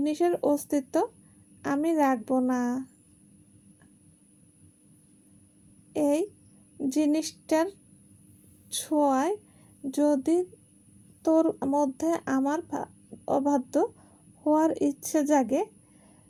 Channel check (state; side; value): identical; both; correlation 1.00